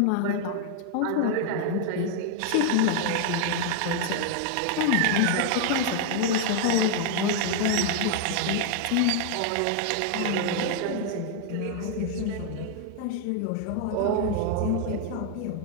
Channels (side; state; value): both; different; correlation 0.00